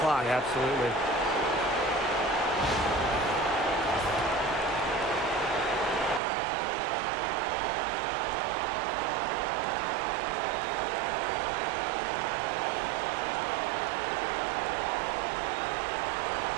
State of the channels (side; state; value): left; drops out; at 6.2 s